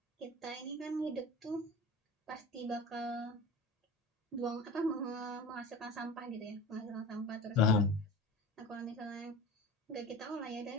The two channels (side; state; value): both; normal; correlation 0.34